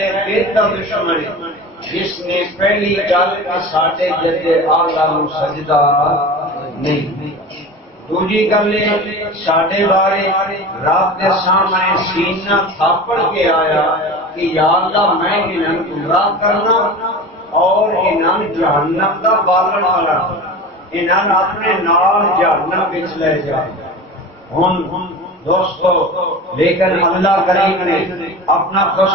بہتر دشمن ہے جس نے پہلی گل کے ساڈے جدے آلہ نو سجدہ نہیں۔ دوسری گل ساڈے بارے رب کے سامنے سینہ تھاپڑ کے آیا کہ یا اللہ میں انہاں گمراہ کرنا اور انہاں جہنم کا بالن بنانا، انہاں اپنے نال جہنم وچ لے جا۔ ہن دوستو لیکن اللہ کریم نے اپنا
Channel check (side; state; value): both; normal; correlation 0.33